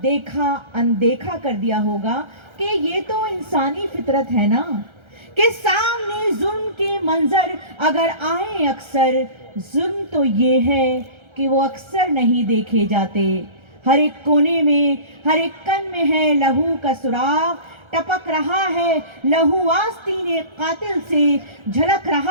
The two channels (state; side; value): late; left; 1.3 ms